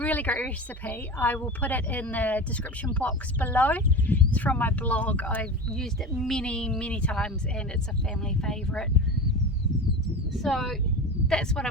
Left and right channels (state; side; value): normal; both; correlation 0.28